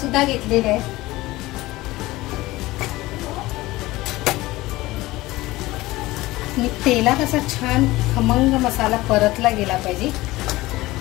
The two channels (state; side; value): quieter; right; 18.8 dB